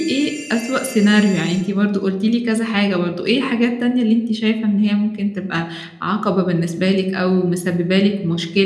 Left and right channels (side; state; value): both; identical; correlation 1.00